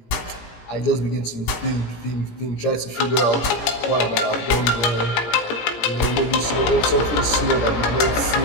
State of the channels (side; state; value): right; late; 17 ms